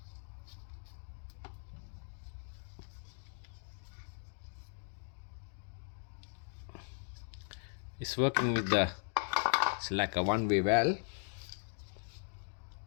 It's working with the. It's like a one-way valve.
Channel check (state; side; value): silent; right; digital silence